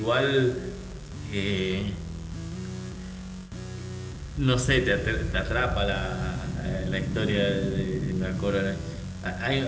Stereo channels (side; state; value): both; identical; correlation 1.00